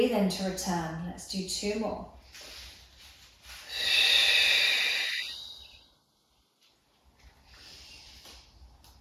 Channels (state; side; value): identical; both; correlation 1.00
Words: in to return. Let's do two more.